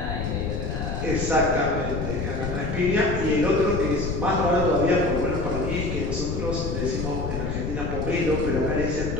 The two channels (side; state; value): left; noise; rumble, 3 dB below the sound